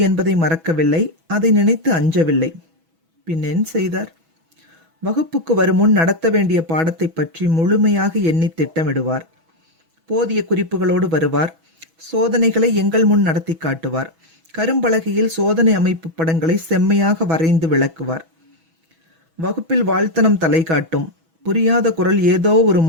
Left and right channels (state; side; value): late; left; 6.1 ms